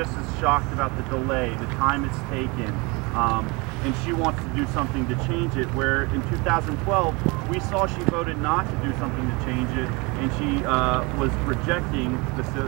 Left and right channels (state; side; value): quieter; left; 27.5 dB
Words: as shocked about the delay, the time it's taken, and she wants to do something to change it, where in 2012 we saw she voted not to do something to change it, and she was rejecting the